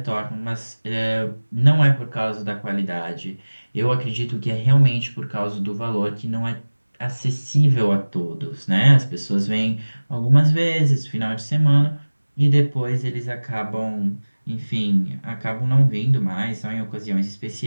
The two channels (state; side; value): inverted; both; correlation -1.00